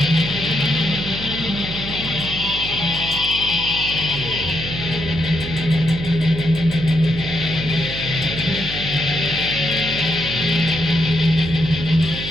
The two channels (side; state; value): right; noise; hum, 9 dB below the sound